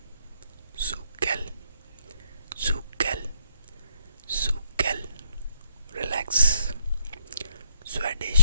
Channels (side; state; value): both; inverted; correlation -0.74